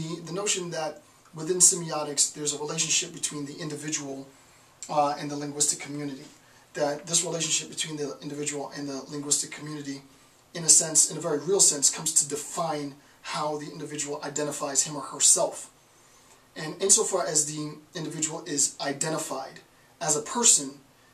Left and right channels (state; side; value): identical; both; correlation 1.00